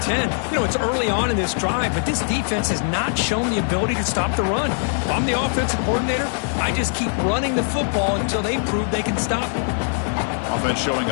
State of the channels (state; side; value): silent; right; 62 dB below the other